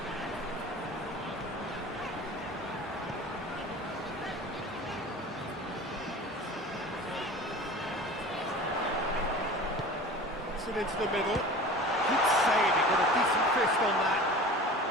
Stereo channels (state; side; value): normal; both; correlation 0.38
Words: Puts it into the middle. Good save, he got a decent fist on that.